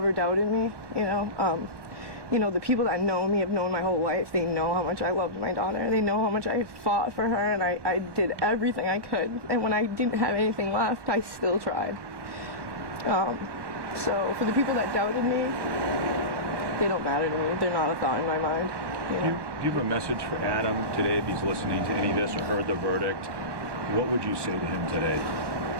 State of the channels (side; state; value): left; late; 1.2 ms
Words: doubted me. The people that know me have known my whole life. They know how much I loved my daughter. They know how much I fought for her, and I did everything I could. And when I didn't have anything left, I still tried. So for the people that doubted me, they don't matter to me. They're not a thought in my mind. Do you have a message for Adam today if he's listening to any of this or heard the verdict? What would you say to him today?